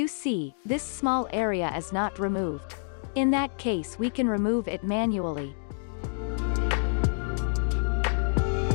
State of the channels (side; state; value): right; silent; digital silence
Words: see, this small area is not removed. In that case we can remove it manually.